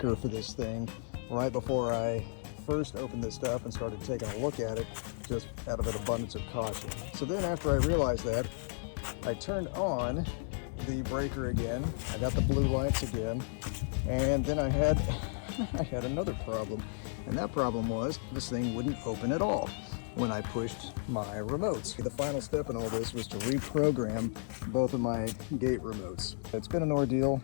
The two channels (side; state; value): right; silent; 55 dB below the other